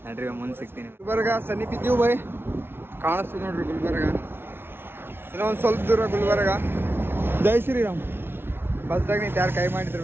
ನಡ್ರಿ ಮುಂದೆ ಸಿಗ್ತೀನಿ ಗುಲ್ಬರ್ಗ ಸನಿಪಿದ್ದೀವಿ ಬೈ ಕಾಣಿಸ್ತೀವಿ ನೋಡ್ರಿ ಗುಲ್ಬರ್ಗ ಇನ್ನೂ ಒಂದು ಸ್ವಲ್ಪ ದೂರ ಗುಲ್ಬರ್ಗ ಜೈ ಶ್ರೀರಾಮ್ ಬಸ್ದಾಗ ನಿಂತು ಯಾರು ಕೈ ಮಾಡಿದ್ರು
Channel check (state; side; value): late; left; 0.11 ms